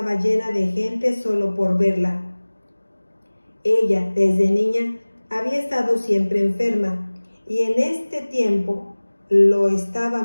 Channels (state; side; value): inverted; both; correlation -1.00